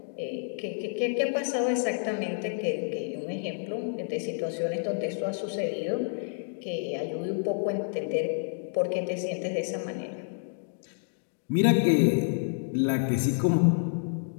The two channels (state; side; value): silent; right; digital silence